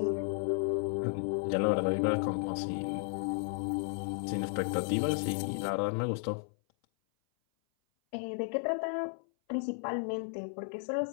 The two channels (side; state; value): right; silent; 55 dB below the other